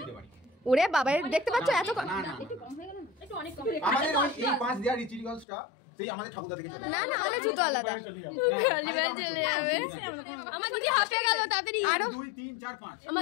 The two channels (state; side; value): drops out; right; at 5.5 s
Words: ওরে বাবা, দেখতে পাচ্ছ এত না না, একটু কম হয়ে গেল না, একটু অনেক কম। আমাদের ওই এই পাঁচ দেওয়ার রিচুয়ালসটা সেই আমাদের ঠাকুরদা থেকে চলে। না না, আমাদের জুতো আলাদা। আমার দিদি হাসে গেল তাড়াতাড়ি। আরো 2 3 4 5।